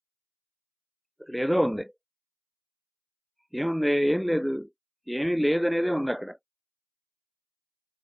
అక్కడ ఏదో ఉంది. ఏముంది? ఏం లేదు, ఏమీ లేదనేదే ఉంది అక్కడ.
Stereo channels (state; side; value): identical; both; correlation 1.00